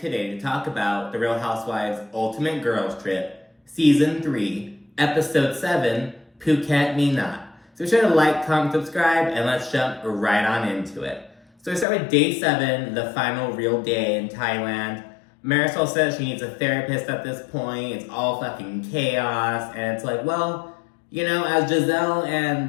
to talk about The Real Housewives Ultimate Girls Trip, Season 3, Episode 7, Phuket Me Not. So be sure to like, comment, subscribe, and let's jump right on into it. So we start with Day 7, the final real day in Thailand. Marisol says she needs a therapist at this point. It's all fucking chaos. And it's like, well, as Giselle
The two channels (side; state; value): right; drops out; at 11.9 s